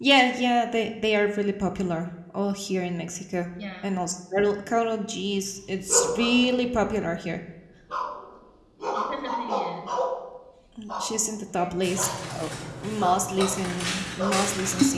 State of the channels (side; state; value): both; identical; correlation 1.00